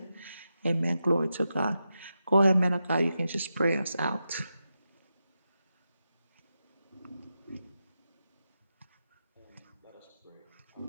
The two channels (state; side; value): inverted; both; correlation -0.89